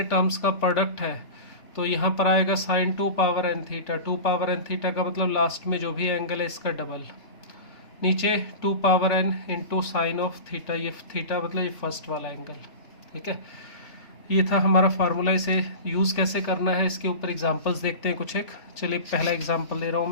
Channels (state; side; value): late; right; 3.1 ms